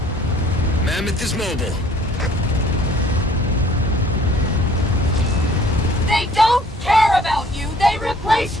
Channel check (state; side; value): normal; both; correlation 0.56